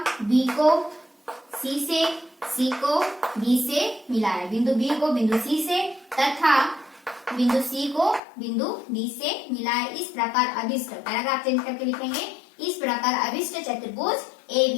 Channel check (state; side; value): drops out; right; at 8.2 s